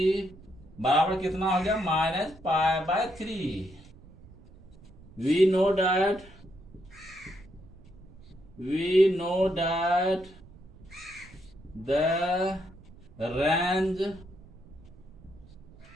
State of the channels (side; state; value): right; noise; rumble, 22 dB below the sound